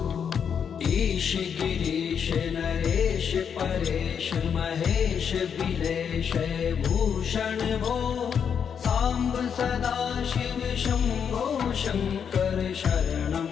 ईश गिरीश नरेश परेश महेश बिलेश भूषण भो साम्ब सदा शिव शम्भो शङ्कर शरणं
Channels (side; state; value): right; quieter; 7.4 dB